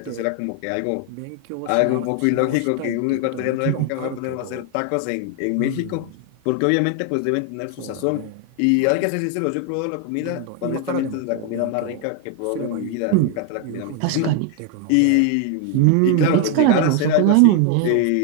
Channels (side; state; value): both; different; correlation 0.01